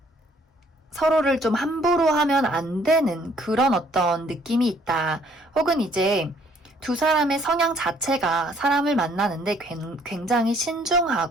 서로를 좀 함부로 하면 안 되는 그런 어떤 느낌이 있다. 혹은 이제 두 사람의 성향 자체가 사람을 만나는데 굉장히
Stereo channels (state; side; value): normal; both; correlation 0.62